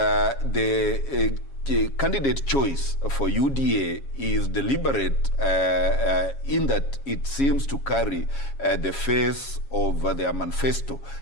candidate choice for UDA is deliberate in that it seems to carry the face of their manifesto.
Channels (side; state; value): right; late; 7.3 ms